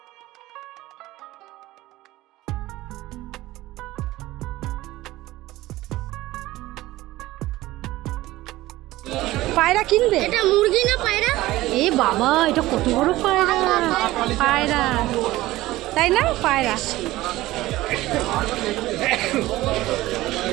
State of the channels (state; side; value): quieter; left; 17.3 dB